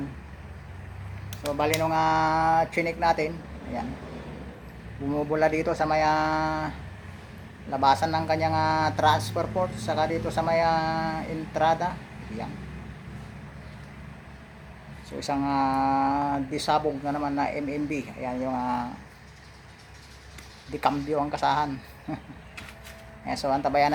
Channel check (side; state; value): both; identical; correlation 1.00